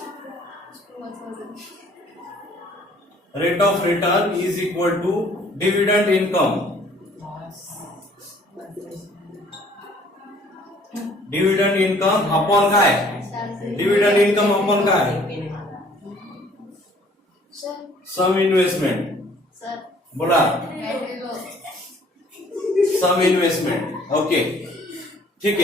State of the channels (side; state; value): both; normal; correlation 0.57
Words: of return is equal to dividend income. Dividend income upon काय? डिव्हिडंड इन्कम अपॉन काय? Sum investment. बोला. Sum investment. ओके ठीक